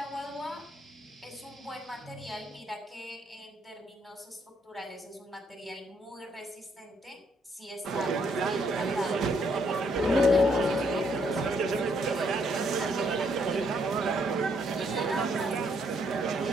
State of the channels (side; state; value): both; normal; correlation 0.71